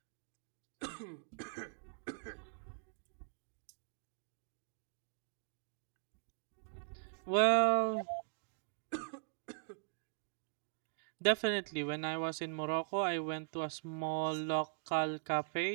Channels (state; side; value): silent; left; digital silence